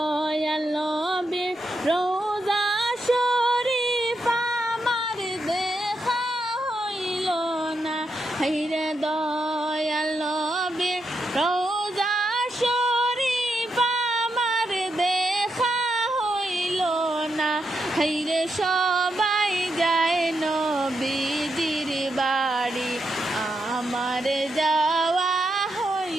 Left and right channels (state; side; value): normal; both; correlation 0.83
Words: নবীর রোজা শরীফ আমার দেখা হইল না। হাইরে দয়াল নবীর রোজা শরীফ আমার দেখা হইল না। হাইরে সবাই যায় নবীজির বাড়ি, আমার যাওয়া